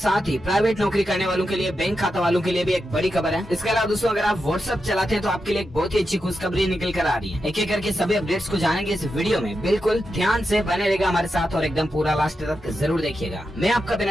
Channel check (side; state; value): both; normal; correlation 0.88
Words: ही प्राइवेट नौकरी करने वालों के लिए, बैंक खाता वालों के लिए भी एक बड़ी खबर है। इसके अलावा दोस्तों अगर आप व्हाट्सएप चलाते हैं तो आपके लिए एक बहुत ही अच्छी खुशखबरी निकल कर आ रही है। एक एक करके सभी अपडेट्स को जानेंगे इस वीडियो में, बिल्कुल ध्यान से बने रहेगा हमारे साथ और एकदम पूरा लास्ट तक जरूर देखिएगा। मैं आपका